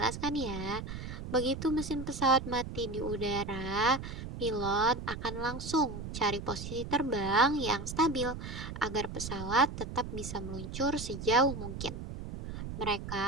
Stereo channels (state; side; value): noise; right; rumble, 8 dB below the sound